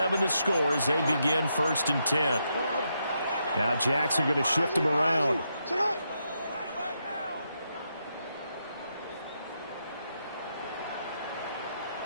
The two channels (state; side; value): inverted; both; correlation -0.81